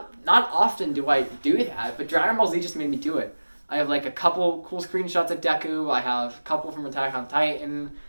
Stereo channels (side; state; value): both; inverted; correlation -1.00